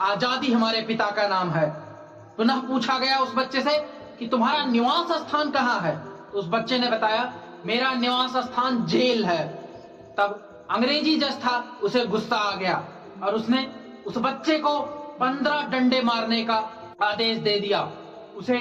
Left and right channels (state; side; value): identical; both; correlation 1.00